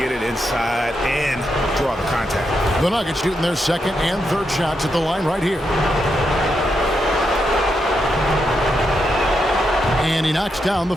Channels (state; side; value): normal; both; correlation 0.83